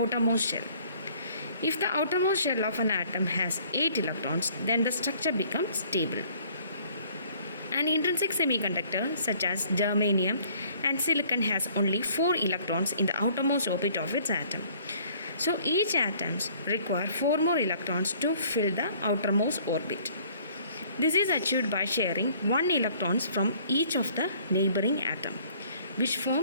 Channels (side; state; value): both; inverted; correlation -0.57